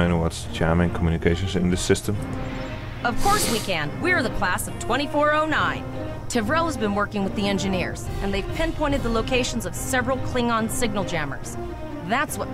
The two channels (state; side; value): identical; both; correlation 1.00